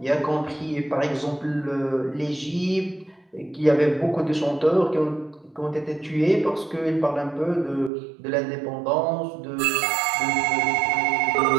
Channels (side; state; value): left; drops out; at 7.9 s